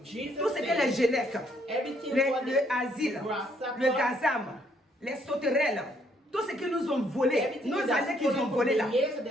Jesus tout ce que said, les Gélèques, Everything what le the asile, grasshopper, le gazam, les sauterelles, tout ce qu'ils nous ont volé, everything nos that années qu'ils ont stolen volées là. from the years that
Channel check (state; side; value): normal; both; correlation 0.69